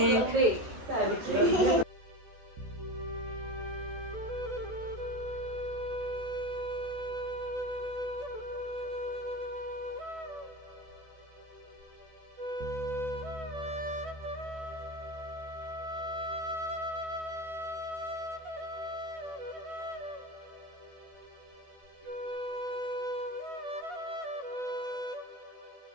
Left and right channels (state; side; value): late; left; 14 ms